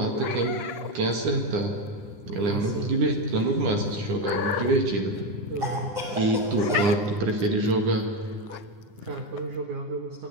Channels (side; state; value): left; late; 9.8 ms